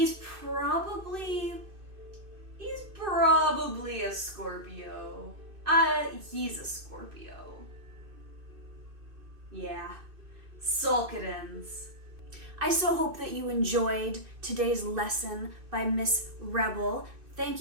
probably a Scorpio. He's a Scorpio. Yeah. Solkadins. I so hope that you enjoyed today's lesson by Miss Rebel. Thank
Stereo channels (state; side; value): late; left; 2.6 ms